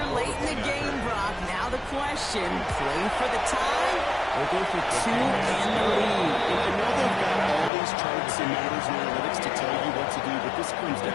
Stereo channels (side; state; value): right; drops out; at 7.7 s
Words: late in the game, Brock. Now the question, play for the tie or go for 2 and the lead? And I know they've got all these charts and numbers and analytics to tell you what to do, but this comes